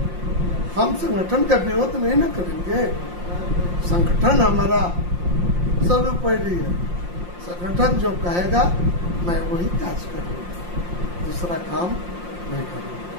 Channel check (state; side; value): late; left; 5.7 ms